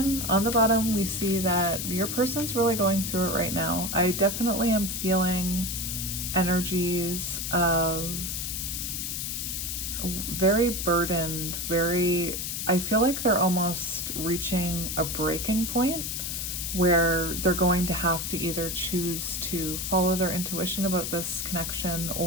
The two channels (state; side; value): noise; left; hiss, 3 dB below the sound